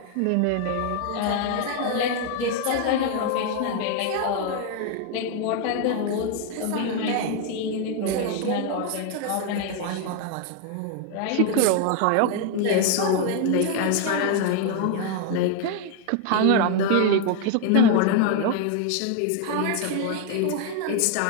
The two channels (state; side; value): different; both; correlation 0.01